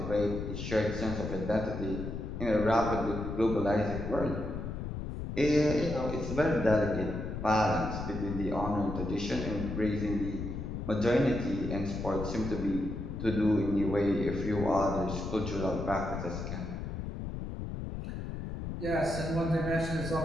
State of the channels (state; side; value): noise; left; rumble, 5 dB below the sound